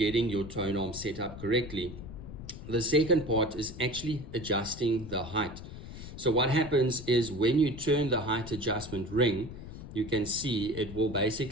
your tone arm set up correctly. The second part is actually adjusting the height. So what happens is when you turn the height adjustment ring, you can see it will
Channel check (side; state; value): left; noise; rumble, 12 dB below the sound